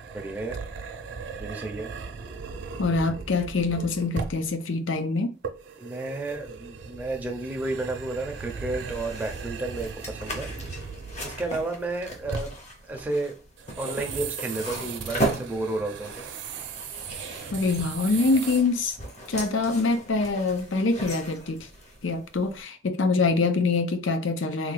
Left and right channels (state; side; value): normal; both; correlation 0.45